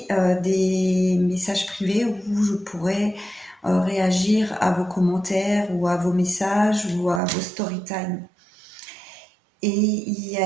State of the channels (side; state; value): left; drops out; at 7.2 s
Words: des messages privés où je pourrais réagir à vos commentaires ou à vos messages ou à vos story time. Et il y